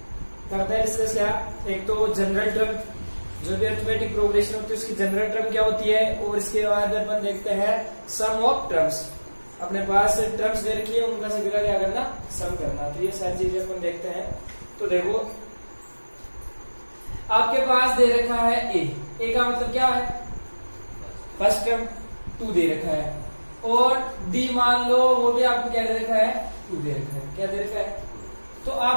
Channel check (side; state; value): both; inverted; correlation -1.00